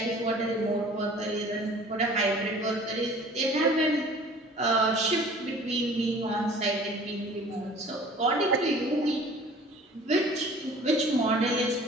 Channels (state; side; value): normal; both; correlation 0.48